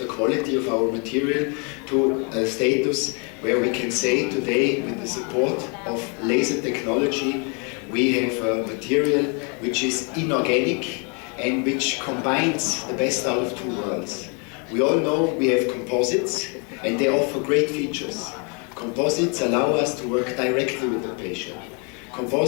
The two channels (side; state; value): right; quieter; 35.4 dB